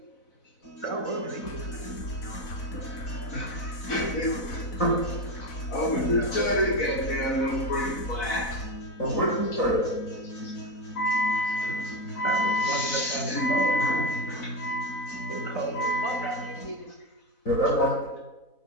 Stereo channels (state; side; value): late; right; 4.0 ms